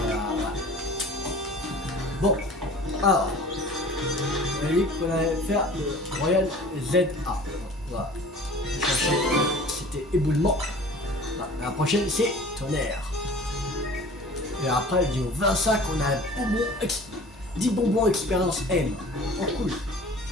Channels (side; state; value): both; normal; correlation 0.44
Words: voilà. Bon, alors, on a dit qu'on allait faire le Royal ZA. Voilà. C'était éboulement. Voilà. La prochaine, c'est tonnerre. Et après, vidéo 25, on a 10 bonbons expérience M. Oh, cool.